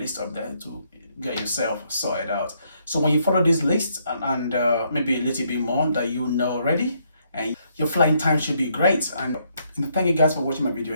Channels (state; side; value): inverted; both; correlation -0.72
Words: up there to get yourself sorted out. So when you follow this list and maybe a little bit more that you know already, and your flying time should be great. And thank you guys for watching my video